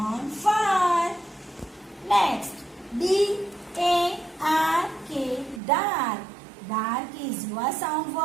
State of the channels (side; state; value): left; drops out; at 5.6 s